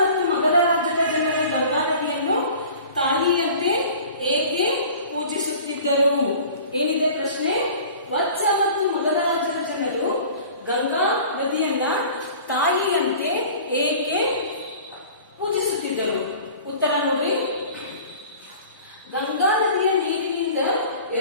ಮಗಧ ರಾಜ್ಯದ ಜನರು ಗಂಗಾ ನದಿಯನ್ನು ತಾಯಿಯಂತೆ ಏಕೆ ಪೂಜಿಸುತ್ತಿದ್ದರು? ಏನಿದೆ ಪ್ರಶ್ನೆ? ವತ್ಸ ಮತ್ತು ಮಗಧ ರಾಜ್ಯದ ಜನರು ಗಂಗಾ ನದಿಯನ್ನ ತಾಯಿಯಂತೆ ಏಕೆ ಪೂಜಿಸುತ್ತಿದ್ದರು? ಉತ್ತರ ನೋಡ್ರಿ, ಗಂಗಾ ನದಿಯ ನೀರಿನಿಂದ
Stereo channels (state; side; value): inverted; both; correlation -0.43